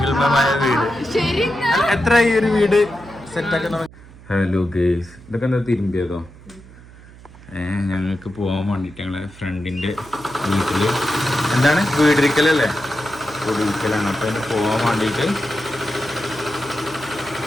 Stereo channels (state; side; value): noise; right; hum, 21 dB below the sound